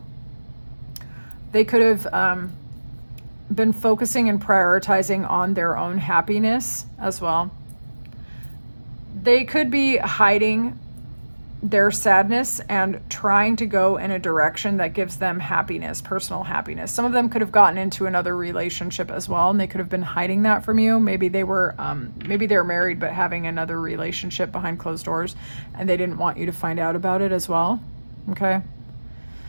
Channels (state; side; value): inverted; both; correlation -1.00